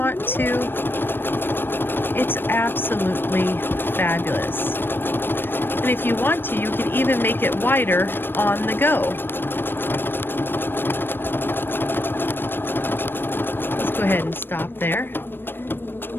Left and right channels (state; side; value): late; right; 0.098 ms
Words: to. It's absolutely fabulous. And if you want to, you can even make it wider on the go. Let's go ahead and stop there